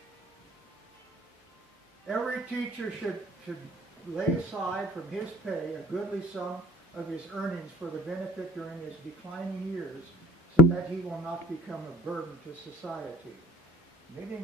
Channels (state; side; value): normal; both; correlation 0.52